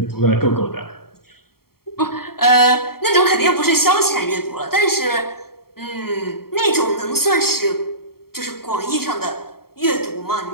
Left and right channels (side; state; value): right; late; 0.94 ms